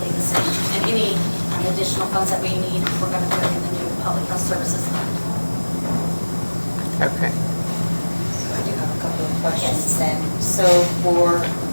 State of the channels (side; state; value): both; inverted; correlation -1.00